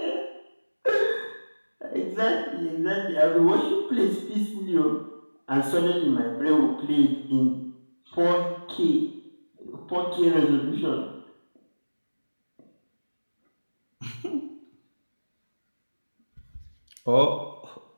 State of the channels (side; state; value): both; inverted; correlation -1.00